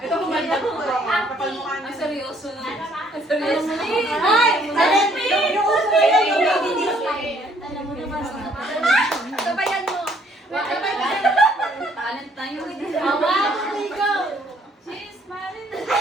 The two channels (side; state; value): both; normal; correlation 0.64